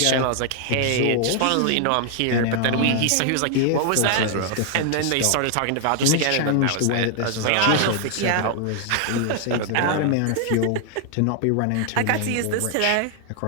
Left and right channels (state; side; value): different; both; correlation 0.00